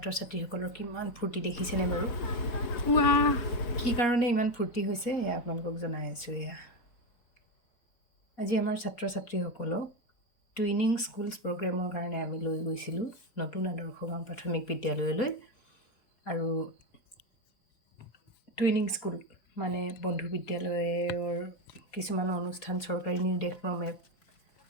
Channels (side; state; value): right; late; 4.2 ms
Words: ছাত্ৰীসকলৰ কিমান ফূৰ্তি দেখিছেনে বাৰু? কি কাৰণে ইমান ফূৰ্তি হৈছে এয়া আপোনালোকক জনাই আছোঁ। আজি আমাৰ ছাত্ৰ ছাত্ৰীসকলক টুইনিং স্কুলছ প্ৰগ্ৰেমৰ কাৰণে আমি লৈ গৈছিলোঁ নতুন আদৰ্শ গাঁও প্ৰাথমিক বিদ্যালয়লৈ। আৰু টুইনিং স্কুল মানে বন্ধু বিদ্যালয়ৰ কিছুমান অনুষ্ঠান চৰকাৰী নিৰ্দেশক্ৰমে